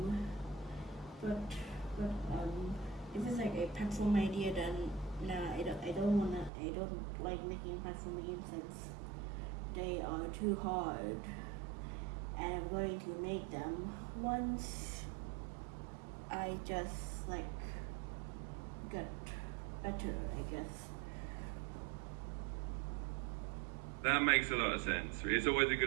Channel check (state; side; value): drops out; left; at 6.5 s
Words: But if it's like a platform idea, then Nah, I don't like making platform games since they are too hard. And I'm going to make them once I just like get better, I guess. That makes a lot of sense. It's always a